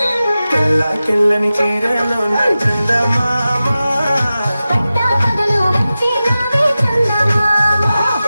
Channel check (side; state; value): both; inverted; correlation -0.94